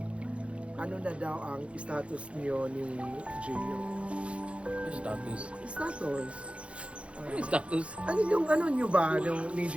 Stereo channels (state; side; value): late; left; 0.060 ms